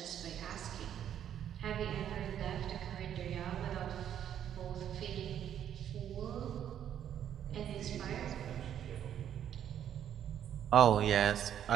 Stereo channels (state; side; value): quieter; left; 9.9 dB